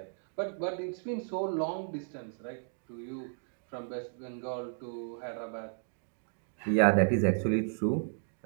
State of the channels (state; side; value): silent; left; digital silence